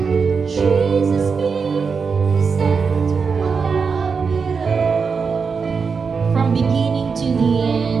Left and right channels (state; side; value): quieter; left; 5.4 dB